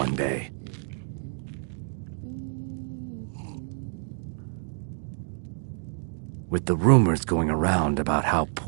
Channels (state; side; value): silent; left; digital silence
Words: day. With the rumors going around about how